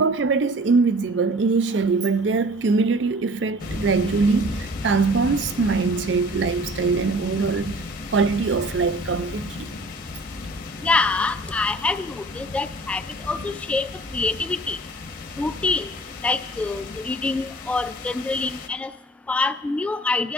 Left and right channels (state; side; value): normal; both; correlation 0.47